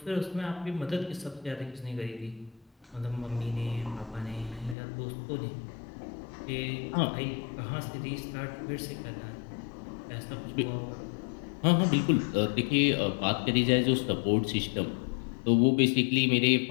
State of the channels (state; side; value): drops out; right; at 4.8 s